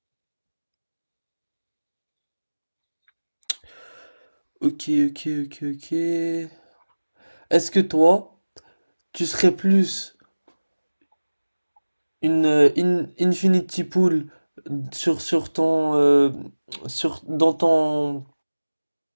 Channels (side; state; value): both; inverted; correlation -1.00